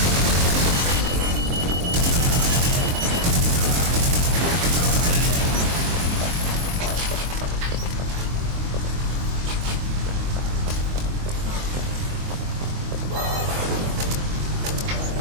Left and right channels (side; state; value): left; late; 23 ms